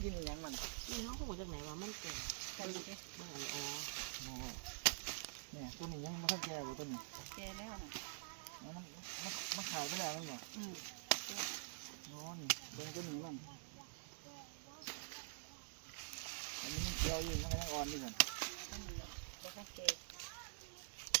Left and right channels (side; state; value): left; silent; digital silence